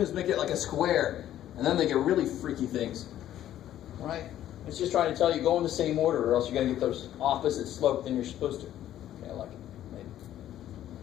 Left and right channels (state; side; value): quieter; right; 12.1 dB